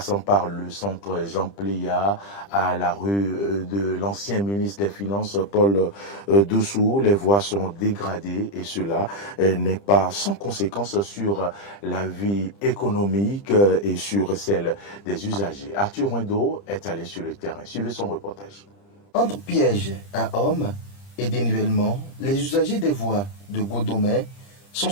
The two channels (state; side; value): late; right; 30 ms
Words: par le centre Jean Pléa à la rue de l'ancien ministre des Finances Paul Dessous. Les voies sont dégradées et cela n'est pas sans conséquence sur la vie économique et sur celle des usagers. Arthur Wendo est allé sur le terrain. Suivez son reportage. Entre pièges à hommes et dénivellement, les usagers des voies de Godomè sont